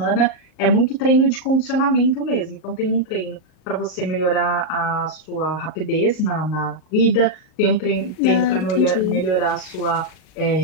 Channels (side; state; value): right; late; 38 ms